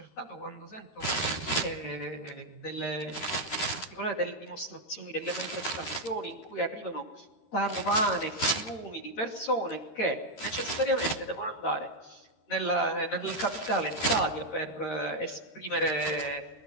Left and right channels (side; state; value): right; late; 13 ms